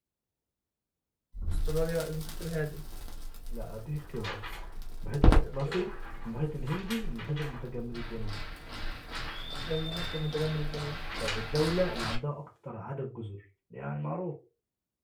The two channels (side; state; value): both; identical; correlation 1.00